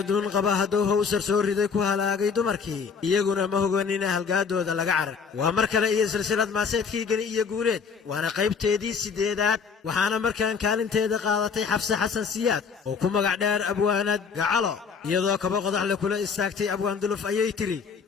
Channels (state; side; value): quieter; right; 5.8 dB